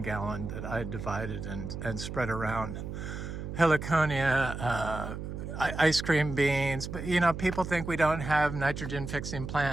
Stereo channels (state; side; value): noise; right; hum, 7 dB below the sound